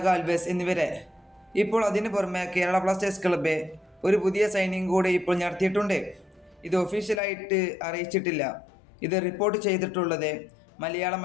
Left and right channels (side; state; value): right; drops out; at 7.2 s